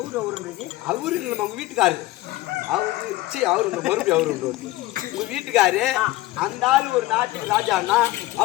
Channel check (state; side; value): quieter; right; 17.8 dB